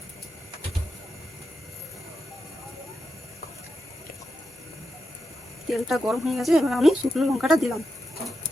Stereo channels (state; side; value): normal; both; correlation 0.87